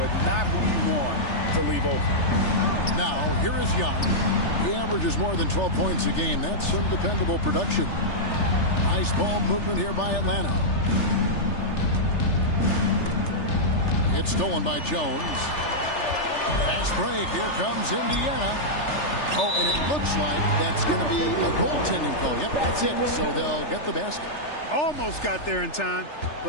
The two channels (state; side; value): late; right; 3.4 ms